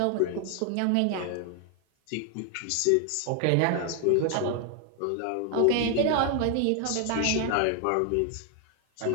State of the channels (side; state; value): both; different; correlation 0.00